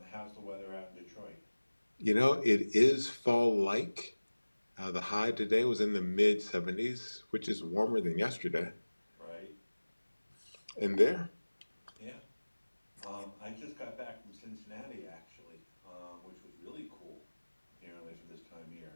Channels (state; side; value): inverted; both; correlation -1.00